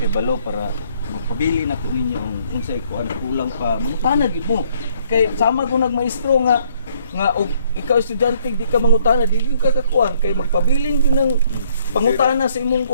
kebalo para magpabili na ko ninyo kung sa'yo ko ano kulang pa. Mangutana yun mo. Kaya sama ko nagmaestro nga og ikaw estudyante di ka mangutana, di ka kakuan. Kaya magpabiling yun ng pangutana sa imong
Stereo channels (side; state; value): both; inverted; correlation -0.65